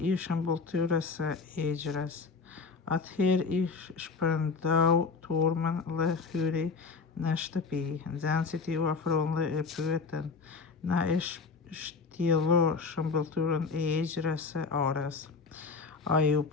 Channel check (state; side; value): quieter; right; 4.6 dB